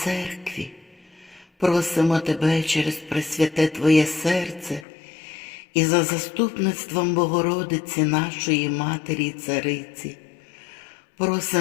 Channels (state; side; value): drops out; right; at 4.9 s